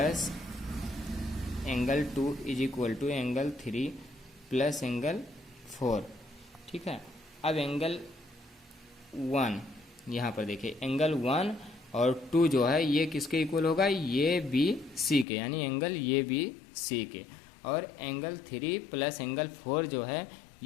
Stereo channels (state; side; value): drops out; right; at 15.2 s